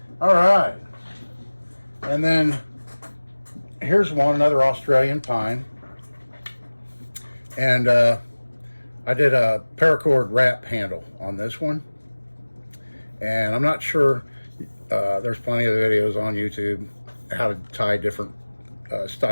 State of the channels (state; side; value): inverted; both; correlation -1.00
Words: All right, and then here's another Australian pine, and I did a paracord wrap handle on this one, and I'm not sure, there's plenty of videos on YouTube how to tie different